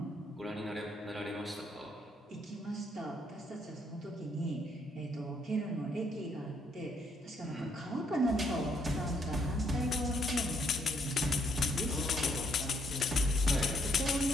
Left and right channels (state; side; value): normal; both; correlation 0.71